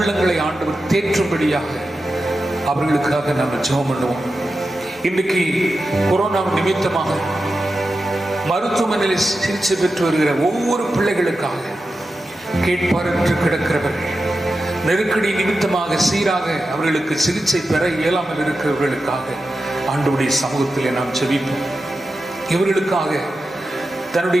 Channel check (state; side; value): normal; both; correlation 0.91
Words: ஆண்டவர் தேற்றும்படியாக அவர்களுக்காக நாம் ஜெபம் பண்ணுவோம். இன்றைக்கு கொரோனா நிமித்தமாக மருத்துவமனையில் சிகிச்சை பெற்று வருகிற ஒவ்வொரு பிள்ளைகளுக்காக கேட்பாரற்று கிடக்கிறவர்கள், நெருக்கடி நிமித்தமாக சீராக அவர்களுக்கு சிகிச்சை பெற இயலாமல் இருக்கிறவர்களுக்காக ஆண்டவருடைய சமூகத்திலே நாம் ஜெபிப்போம். இவர்களுக்காக